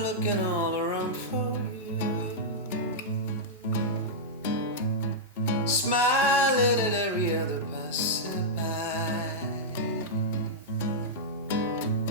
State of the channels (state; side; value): normal; both; correlation -0.08